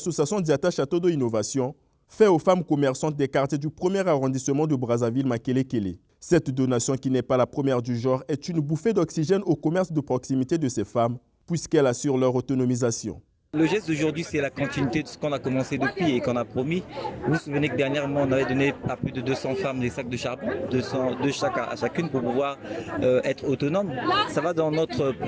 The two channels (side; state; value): both; identical; correlation 1.00